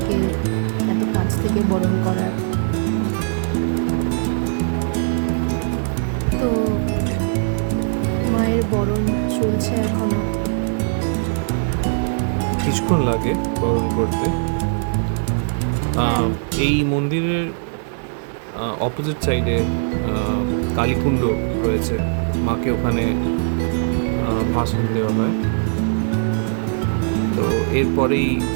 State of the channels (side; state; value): left; silent; digital silence